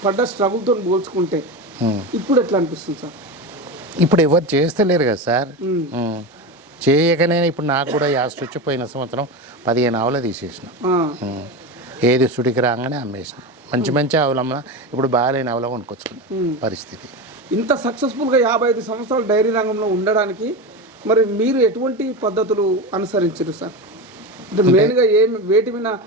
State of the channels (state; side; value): normal; both; correlation 0.21